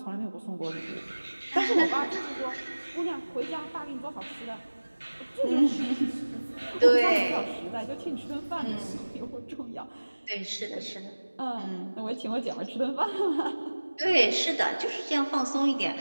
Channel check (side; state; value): both; inverted; correlation -1.00